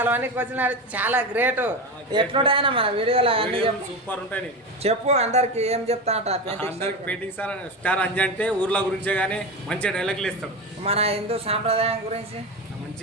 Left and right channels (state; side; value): normal; both; correlation 0.21